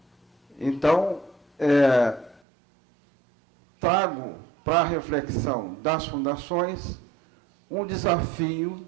Então, trago para a reflexão das fundações um desafio,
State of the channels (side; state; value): left; drops out; at 2.4 s